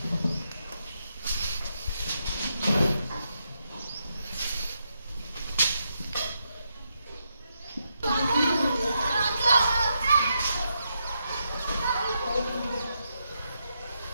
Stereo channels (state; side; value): inverted; both; correlation -0.82